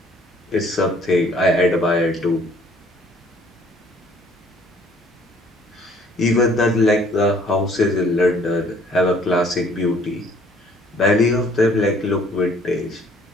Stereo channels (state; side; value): normal; both; correlation 0.58